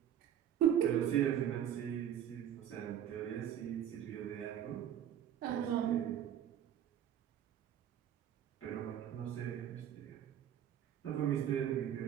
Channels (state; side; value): quieter; left; 10.0 dB